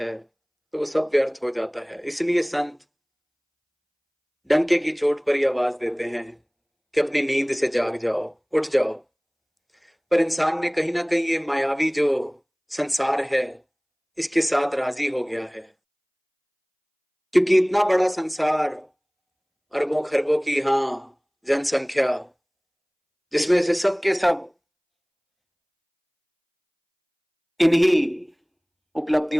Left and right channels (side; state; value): both; identical; correlation 1.00